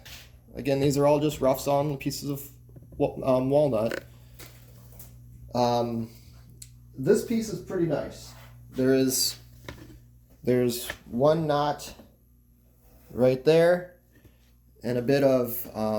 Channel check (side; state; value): both; identical; correlation 1.00